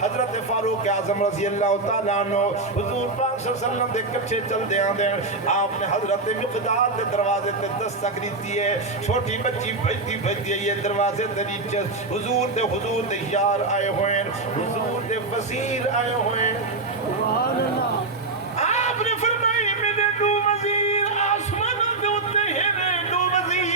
حضرت فاروق اعظم رضی اللہ تعالیٰ عنہ حضور پاک صلی اللہ علیہ وسلم دے کچھے چل دے آن دیں آپ نے حضرت مقداد دے دروازے تے دستک دیتی ہے چھوٹی بچی بھجتی ہے یہ دروازے تے نیچے حضور دے یار آئے ہوئے حضور دے وزیر آئے ہوئے سبحان اللہ آپ نے فرمایا میرے دو وزیر آسمانہ دے ہوتے ہیں دو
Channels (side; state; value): left; quieter; 3.4 dB